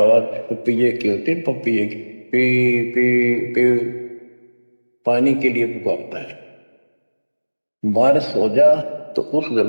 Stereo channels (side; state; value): both; inverted; correlation -1.00